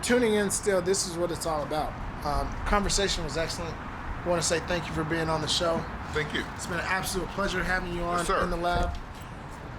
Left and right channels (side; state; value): both; identical; correlation 1.00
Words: in still, this is what it's all about. Conversation was excellent. I want to say thank you for being on the show. Thank you. It's been an absolute pleasure having you on Yes, in the lab.